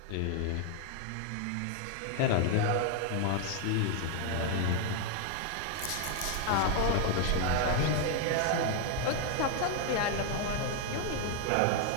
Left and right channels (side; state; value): both; different; correlation 0.00